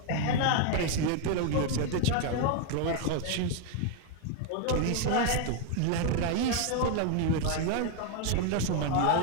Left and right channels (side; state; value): both; different; correlation 0.01